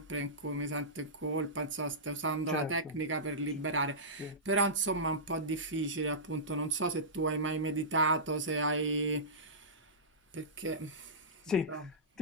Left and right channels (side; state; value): both; normal; correlation -0.18